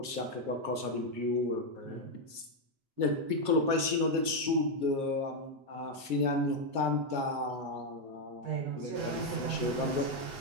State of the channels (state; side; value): late; left; 7.4 ms